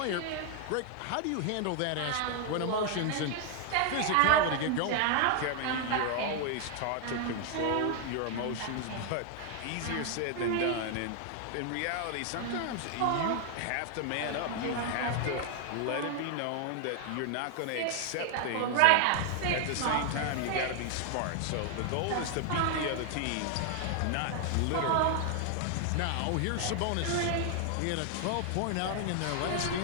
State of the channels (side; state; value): both; different; correlation 0.00